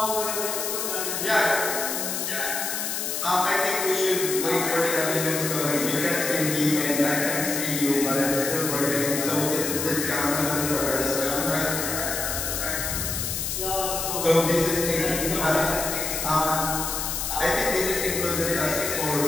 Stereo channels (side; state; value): left; noise; hiss, 2 dB below the sound